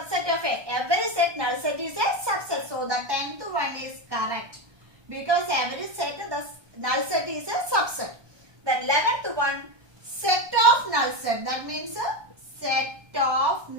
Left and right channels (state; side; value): late; left; 1.3 ms